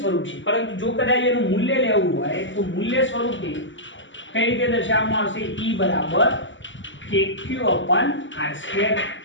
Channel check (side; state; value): right; late; 0.55 ms